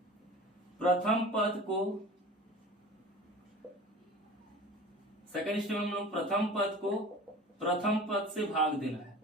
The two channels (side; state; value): both; normal; correlation 0.39